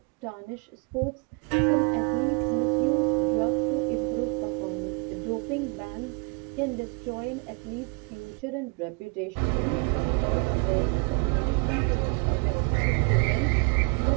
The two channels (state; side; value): quieter; left; 34.0 dB